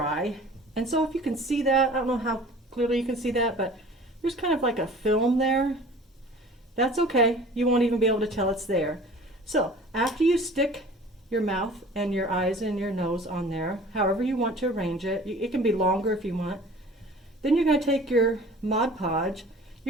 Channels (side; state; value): both; normal; correlation 0.45